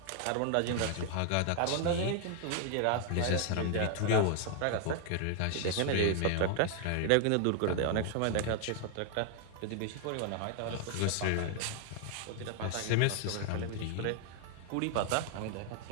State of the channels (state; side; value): different; both; correlation 0.00